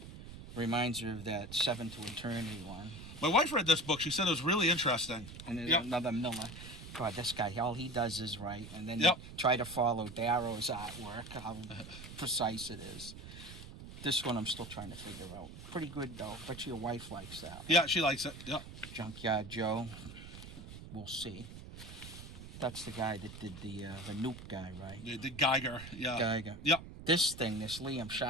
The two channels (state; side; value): noise; right; rumble, 13 dB below the sound